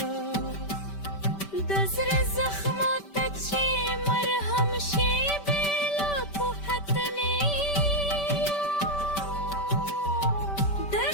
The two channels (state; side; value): late; right; 5.1 ms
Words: دزر زخمات چی مرهم شی بلا پوحتنی